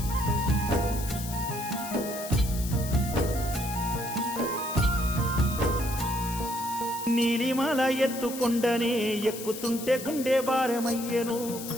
నీలిమాల ఎత్తుకొండనే ఎక్కుతుంటే గుండె భారమయ్యెను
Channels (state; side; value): noise; left; hiss, 10 dB below the sound